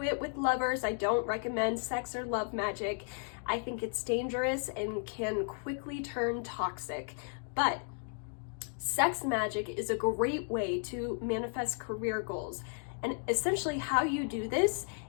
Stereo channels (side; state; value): right; silent; 55 dB below the other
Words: it with lovers. I don't recommend sex or love magic. I think it's dangerous and can quickly turn toxic. But sex magic is a great way to manifest career goals. And essentially how you do this